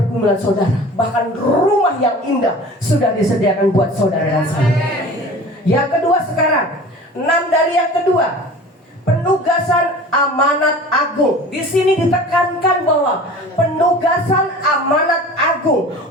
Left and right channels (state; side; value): normal; both; correlation 0.40